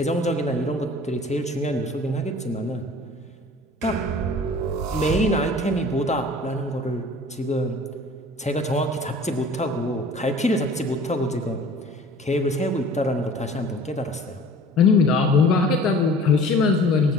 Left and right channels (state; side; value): normal; both; correlation 0.46